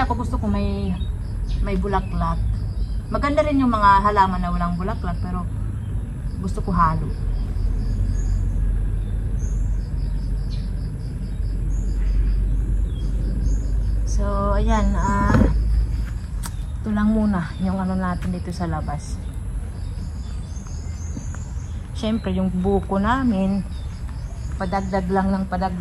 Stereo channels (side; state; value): both; identical; correlation 1.00